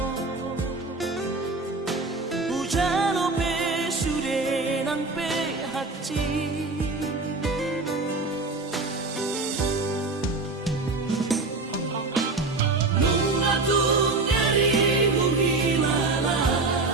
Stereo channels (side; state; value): left; quieter; 3.5 dB